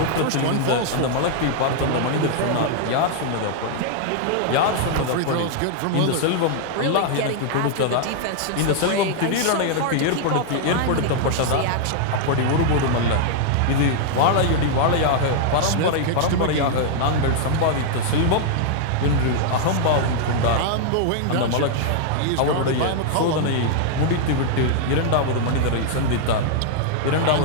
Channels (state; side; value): different; both; correlation -0.01